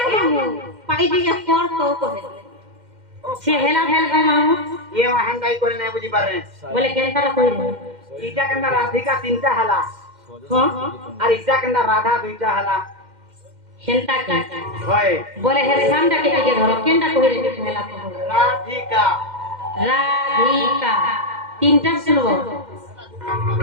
মামু পাই দিকে পর তো কহে সে হেলা হেল গো মামু ये वहां दाई कोने नहीं बुझी पारे বলে কেনটা কই ईटा कंदा राधिका तीनटा हला हां और ईटा कंदा राधा दुईटा हला হেনটা কে होय বলে হে সামটা কে দিকে ধরো কেনটা কই রে হেলা তো राधिका রাধিকা তিনটা শুনবো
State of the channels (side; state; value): left; late; 2.1 ms